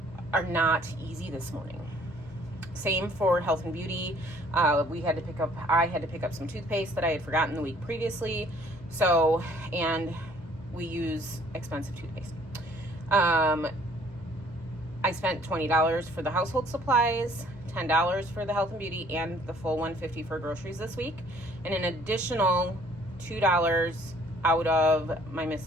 are not easy this morning. Same for health and beauty. I had to pick up some toothpaste that I had forgotten the week previously. And we use expensive toothpaste. I spent $20 for the household supplies, $10 for the health and beauty, and the full $150 for groceries this week, and an additional $2 out of my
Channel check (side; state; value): left; noise; hum, 20 dB below the sound